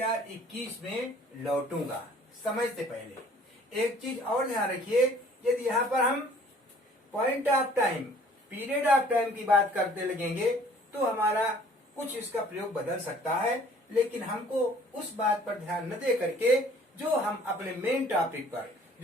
में लौटूंगा, समय से पहले। एक चीज और ध्यान रखिए, यदि यहाँ पर हम point of time, period of time की बात करते लगेंगे तो हमारा कुछ इसका प्रयोग बदल सकता है, लेकिन हमको उस बात पर ध्यान न दे करके जो हम अपने मेन टॉपिक पर,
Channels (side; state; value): both; normal; correlation 0.54